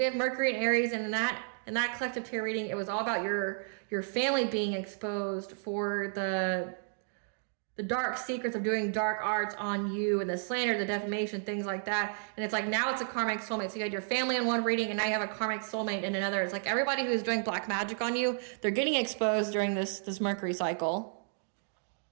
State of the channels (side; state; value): left; silent; digital silence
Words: have Mercury and Aries, and in that collective tarot reading, it was all about your family being exposed for the dark secrets of doing dark arts on you, and the slander, the defamation, things like that. And it's like now it's a karmic soulmate. So you had your family in one reading, and now you have a karmic soulmate in another. It's like everybody who's doing black magic on you, they're getting exposed during this Mercury cycle.